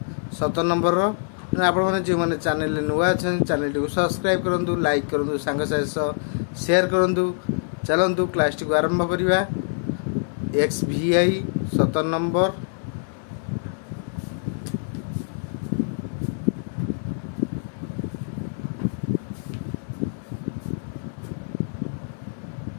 17 नंबर आपण जो मैंने चैनल नुआ अच्छा चैनल टी सब्सक्राइब करूँ, लाइक करूँ, सांग शेयर करूँ। चलतु क्लास टी को आरंभ करवा। एक्स भी आई 17 number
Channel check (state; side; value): silent; right; 62 dB below the other